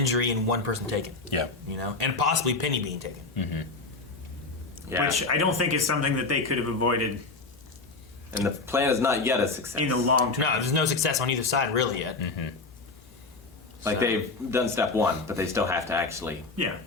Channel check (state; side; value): quieter; right; 3.7 dB